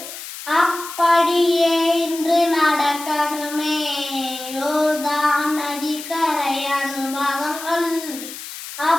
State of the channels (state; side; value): noise; left; hiss, 11 dB below the sound